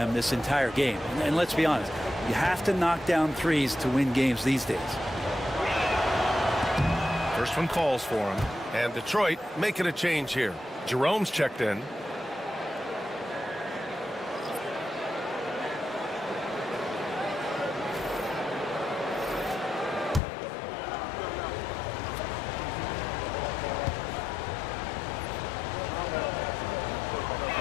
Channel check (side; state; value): right; drops out; at 20.2 s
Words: this entire game. And let's be honest, you have to knock down threes to win games these days. First one calls for him. And Detroit making a change here. Jerome's checked in.